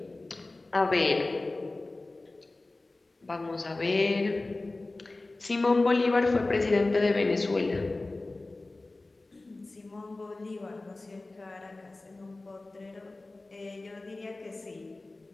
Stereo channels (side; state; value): right; quieter; 3.1 dB